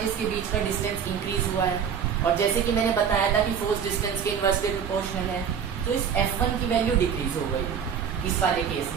के बीच का डिस्टेंस इंक्रीज हुआ है। और जैसे कि मैंने बताया था कि फोर्स डिस्टेंस के इनवर्सली प्रोपोर्शनल है, तो इस F1 की वैल्यू डिक्रीज हो गई। इस वाले केस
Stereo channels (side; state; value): left; quieter; 7.5 dB